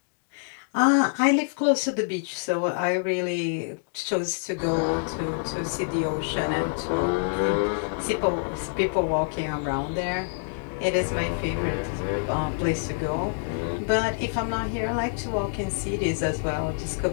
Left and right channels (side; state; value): right; silent; digital silence